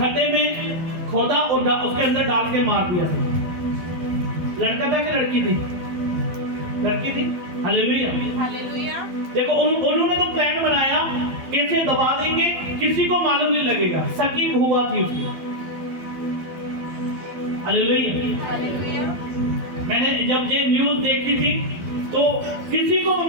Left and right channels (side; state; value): left; late; 12 ms